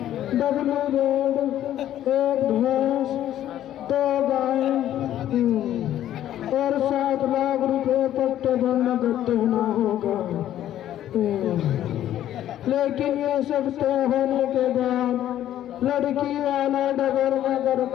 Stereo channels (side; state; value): right; quieter; 12.0 dB